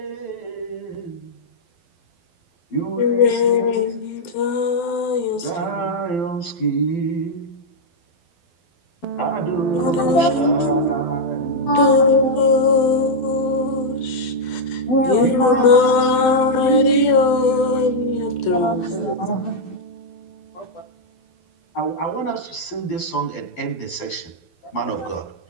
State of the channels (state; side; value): late; right; 12 ms